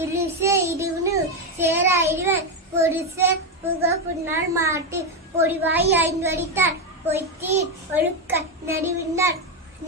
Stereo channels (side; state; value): both; normal; correlation 0.08